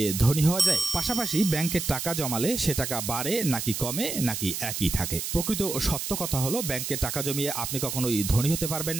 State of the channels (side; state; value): right; noise; hiss, 4 dB below the sound